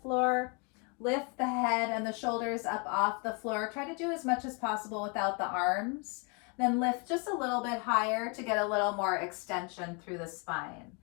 floor, lift the head and the shoulders up off the floor. Try to do as much as possible without the arms. Then lift just a little bit higher to get a little more extension through the spine.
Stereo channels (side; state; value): right; quieter; 33.5 dB